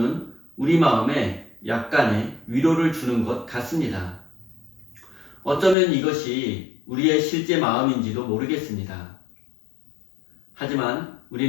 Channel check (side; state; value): right; drops out; at 5.8 s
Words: 우리 마음에 약간의 위로를 주는 것 같습니다. 어쩌면 이것이 우리의 실제 마음인지도 모르겠습니다. 하지만